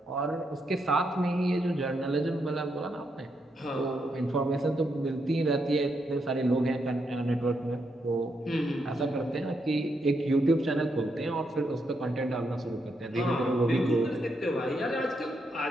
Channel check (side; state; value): both; normal; correlation 0.80